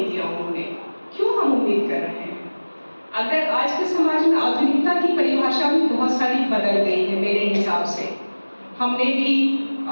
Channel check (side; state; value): both; inverted; correlation -1.00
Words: दिया उन्होंने, क्यों हम उम्मीद कर रहे हैं। अगर आज के समाज में आधुनिकता की परिभाषा भी बहुत सारी बदल गई है मेरे हिसाब से। हमने भी